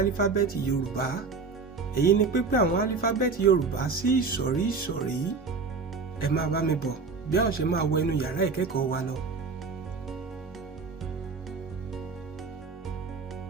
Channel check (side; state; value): left; quieter; 4.5 dB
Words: Yorùbá. Èyí ni pípín àwọn álífábẹ́ẹ̀tì Yorùbá sí ìsọ̀rí ìsọ̀rí. Ẹ máa bá mi bọ̀ bí a ó ṣe máa wọ inú yàrá ìkẹ́kọ̀ọ́ wa lọ.